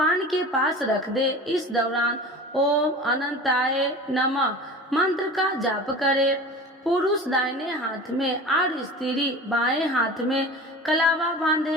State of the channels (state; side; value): normal; both; correlation 0.36